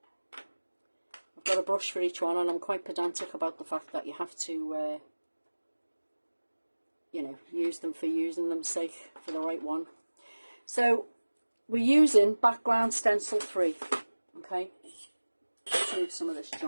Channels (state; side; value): inverted; both; correlation -1.00